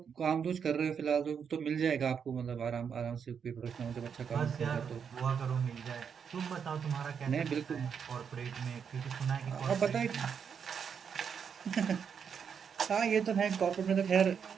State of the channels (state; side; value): quieter; left; 7.0 dB